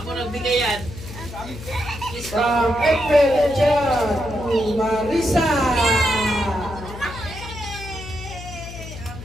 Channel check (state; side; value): noise; left; hum, 12 dB below the sound